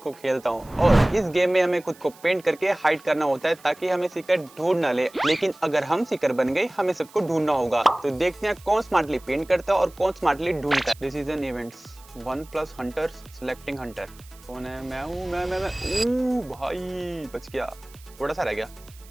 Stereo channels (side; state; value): right; noise; hiss, 24 dB below the sound